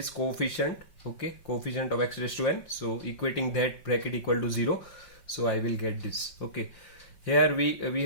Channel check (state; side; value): late; right; 5.7 ms